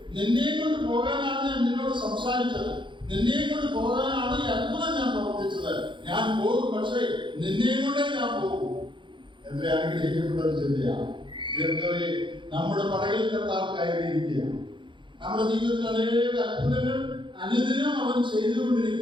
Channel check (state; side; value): late; left; 0.23 ms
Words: നിന്നെയും കൊണ്ട് പോകാനാണ് ഞാൻ നിന്നോട് സംസാരിച്ചത്. നിന്നെയും കൊണ്ട് പോകാനാണ് ഈ അത്ഭുതം ഞാൻ പ്രവർത്തിച്ചത്. ഞാൻ പോകും, പക്ഷേ നിന്നെയും കൊണ്ടേ ഞാൻ പോകും. എത്ര അനുഗ്രഹിക്കപ്പെട്ട ഒരു ചിന്തയാണ്. നമ്മുടെ പടകിൽ കർത്താവ് കയറിയിരിക്കുകയാണ്. നമ്മുടെ ജീവിതത്തിൽ അനേക അത്ഭുതങ്ങൾ അനുദിനം അവൻ